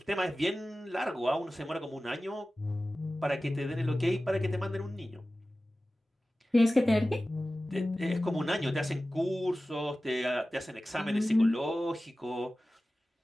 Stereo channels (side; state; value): both; normal; correlation 0.96